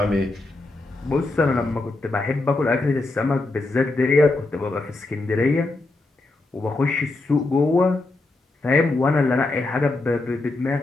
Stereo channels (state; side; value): quieter; right; 3.1 dB